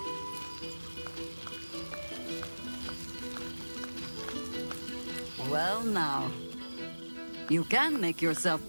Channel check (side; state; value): both; inverted; correlation -1.00